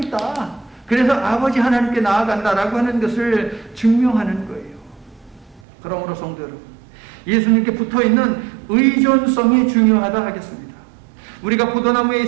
그래서 아버지 하나님께 나아간다라고 하는 것을 증명하는 거예요. 그러므로 성도 여러분, 예수님께 붙어있는 의존성이 중요하다 하겠습니다. 우리가 포도나무에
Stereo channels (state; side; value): drops out; left; at 5.6 s